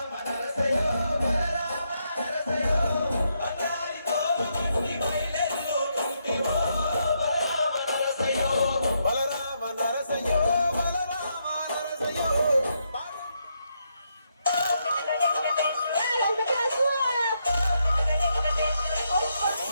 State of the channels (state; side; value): inverted; both; correlation -0.79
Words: నరసయ్యో బలరామ నరసయ్యో బంగారితో గట్టి పైలల్లు తుంటివో బలరామ నరసయ్యో బలరామ నరసయ్యో బలరామ నరసయ్యో